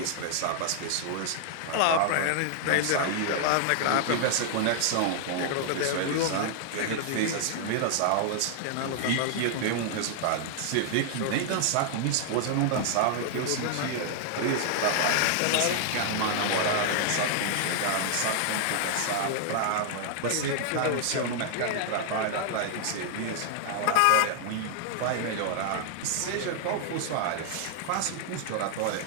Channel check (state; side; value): different; both; correlation -0.01